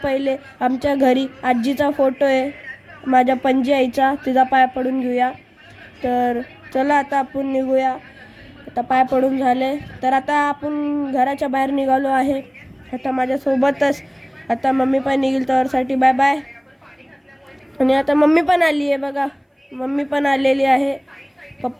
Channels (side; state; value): both; identical; correlation 1.00